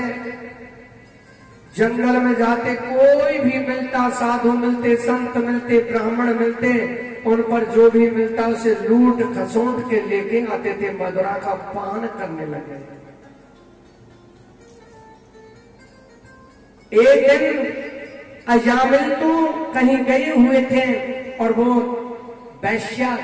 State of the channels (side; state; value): both; identical; correlation 1.00